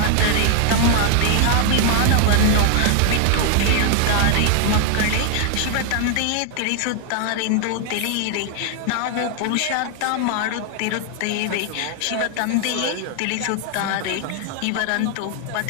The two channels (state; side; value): different; both; correlation 0.00